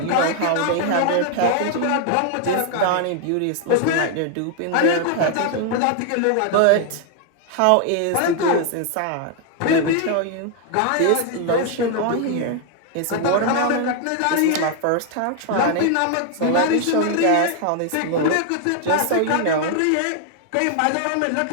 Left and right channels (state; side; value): different; both; correlation 0.00